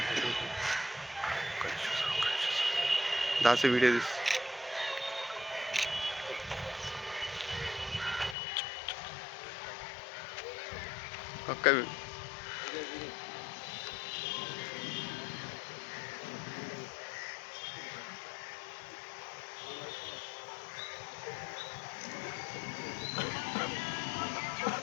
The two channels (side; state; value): right; drops out; at 8.3 s